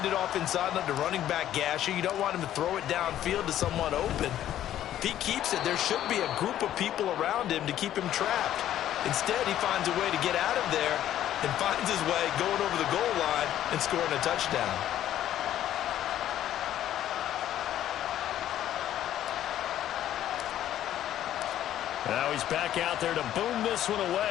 it off inside on the running back gasher. You don't want him to throw it downfield to someone open. If he keeps it, there should be a group of people around him to keep him trapped. Instead, he finds a way to get out of there and finds his way going over the goal line and scoring a touchdown. Now he's back out there to boom this one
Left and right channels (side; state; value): right; quieter; 11.9 dB